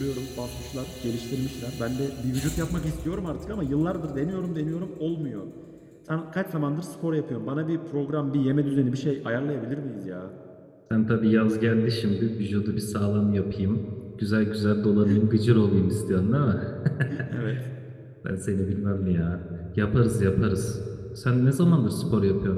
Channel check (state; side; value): identical; both; correlation 1.00